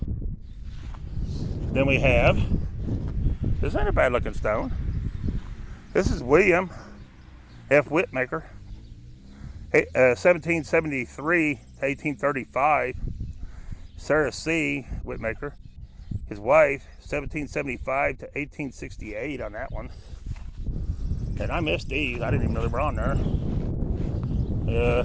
Then we have, this ain't a bad looking stone. This is William F. Whitmaker, 1773 to 1835. Sarah C. Whitmaker, his wife, 1775 to 1868 on that one. And I missed these. I didn't even know they were on there.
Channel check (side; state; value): both; identical; correlation 1.00